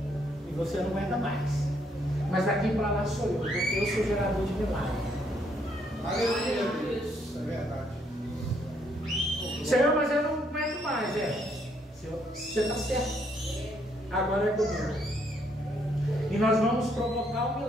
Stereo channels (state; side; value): normal; both; correlation 0.71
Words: E você não aguenta mais. Mas daqui para lá sou eu, porque eu sou gerador de milagre. Aleluia, Deus. É verdade. Senhor, mas eu não aguento mais, Senhor, você está certo. Agora é comigo. E nós vamos provocar um